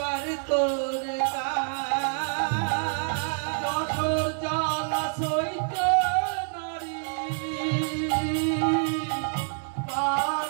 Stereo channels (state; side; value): silent; left; digital silence